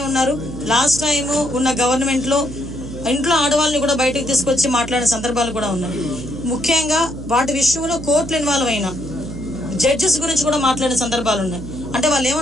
ఉన్నారు, లాస్ట్ టైం ఉన్న గవర్నమెంట్ లో ఇంట్లో ఆడవాళ్ళని కూడా బయటకు తీసుకొచ్చి మాట్లాడిన సందర్భాలు కూడా ఉన్నాయి. ముఖ్యంగా వాటి విషయంలో కోర్టులు ఇన్వాల్వ్ అయిన జడ్జెస్ గురించి కూడా మాట్లాడిన సందర్భాలు ఉన్నాయి. అంటే వాళ్ళు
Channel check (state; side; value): noise; right; hum, 11 dB below the sound